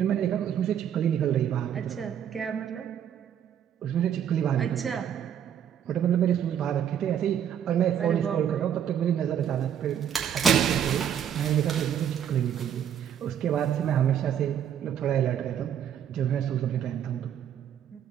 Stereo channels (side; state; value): left; quieter; 9.3 dB